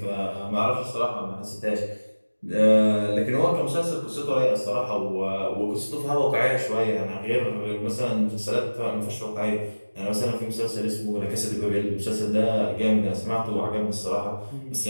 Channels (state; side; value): inverted; both; correlation -1.00